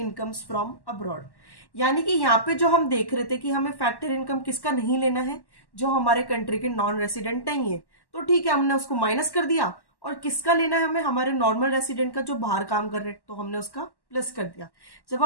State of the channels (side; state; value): right; late; 1.1 ms